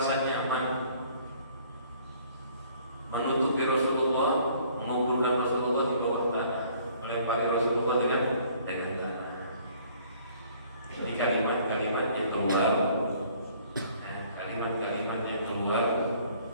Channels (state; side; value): inverted; both; correlation -0.58